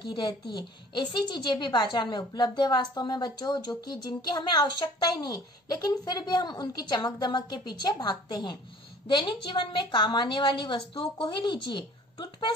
रहती है। ऐसी चीजें भी बाजार में उपलब्ध है वास्तव में बच्चों, जो कि जिनकी हमें आवश्यकता ही नहीं, लेकिन फिर भी हम उनकी चमक दमक के पीछे भागते हैं। दैनिक जीवन में काम आने वाली वस्तुओं को ही लीजिए।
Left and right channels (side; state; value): both; normal; correlation 0.50